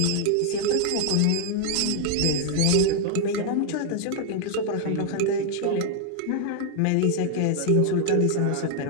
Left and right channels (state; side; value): different; both; correlation 0.00